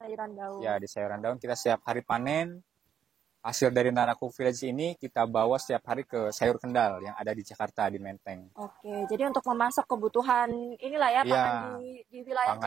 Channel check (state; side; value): quieter; left; 8.9 dB